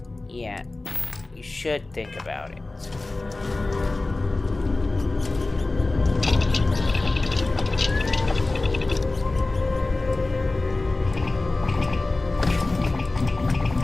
Yeah, you should think about it.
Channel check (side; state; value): right; quieter; 3.1 dB